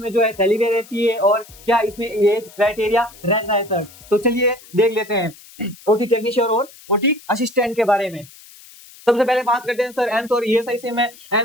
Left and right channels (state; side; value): noise; left; hiss, 22 dB below the sound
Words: जो है सैलरी रहती है और क्या इसमें एज क्राइटेरिया रहता है सर। तो चलिए देख लेते हैं ओटी टेक्नीशियन और ओटी असिस्टेंट के बारे में। सबसे पहले बात करते हैं सर एम्स और ईएसआईसी में।